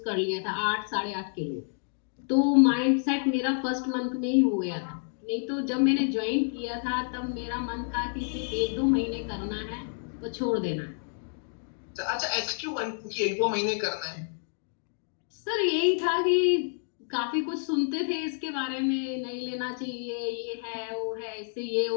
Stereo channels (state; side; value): silent; right; digital silence